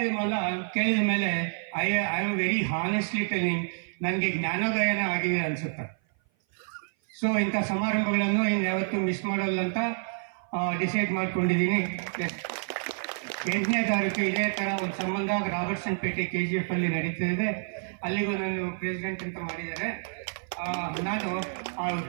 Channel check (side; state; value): left; silent; 56 dB below the other